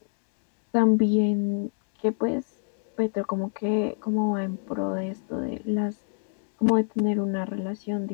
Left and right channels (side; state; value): right; silent; 55 dB below the other